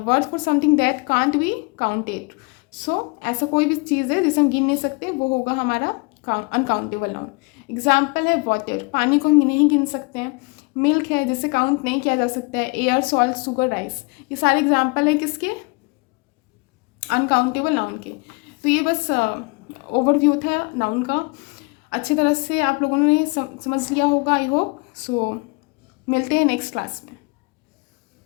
word for something that can't be counted, so ऐसा कोई भी चीज़ है जिसे हम गिन नहीं सकते, वो होगा हमारा अनकाउंटेबल नाउन। एग्जाम्पल है वाटर, पानी को हम नहीं गिन सकते हैं। मिल्क है, जिसे काउंट नहीं किया जा सकता है। एयर, सॉल्ट, शुगर, राइस, ये सारे एग्जाम्पल है किसके, अनकाउंटेबल नाउन के। तो ये बस ओवरव्यू था नाउन का, अच्छी तरह से आप लोगों ने समझ लिया होगा आई होप। सो मिलते हैं नेक्स्ट क्लास में।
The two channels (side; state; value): right; quieter; 29.8 dB